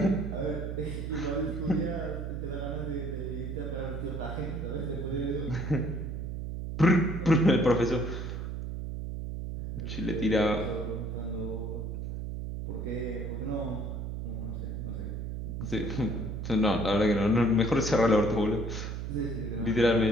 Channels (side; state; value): right; noise; hum, 5 dB below the sound